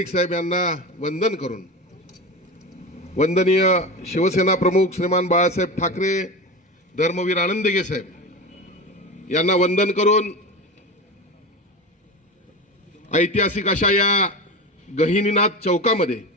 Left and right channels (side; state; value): both; normal; correlation 0.26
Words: साहेब यांना वंदन करून, वंदनीय शिवसेना प्रमुख श्रीमान बाळासाहेब ठाकरे, धर्मवीर आनंदगे साहेब यांना वंदन करून ऐतिहासिक अशा या गहिनीनाथ चौकामध्ये,